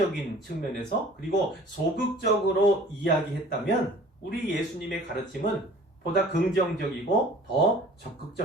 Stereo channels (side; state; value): both; normal; correlation 0.48